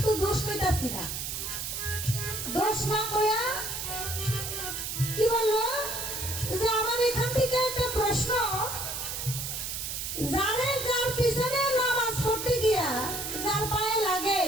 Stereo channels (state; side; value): noise; right; hiss, 4 dB below the sound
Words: দোষ কইতাছি না। দোষ না কইয়া কি বললো যে আমার এখান থেকে একটা প্রশ্ন, যার পিছনে নামাজ পড়তে গিয়া যার পায়ে লাগে,